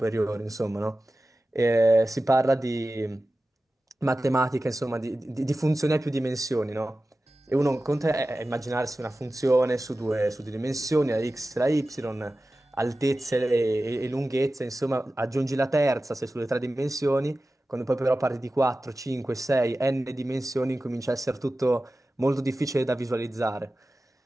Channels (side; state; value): both; normal; correlation 0.95